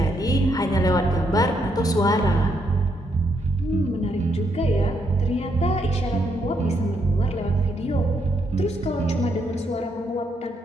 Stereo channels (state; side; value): normal; both; correlation 0.76